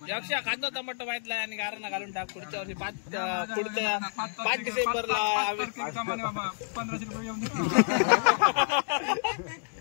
कांदा टमाटो माहितला आणि गारणा घालून टाक पुढच्या वर्षी 5 डिसेंबरला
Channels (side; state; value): right; silent; digital silence